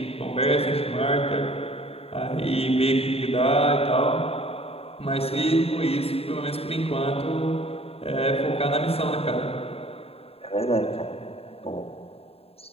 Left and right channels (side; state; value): right; late; 0.29 ms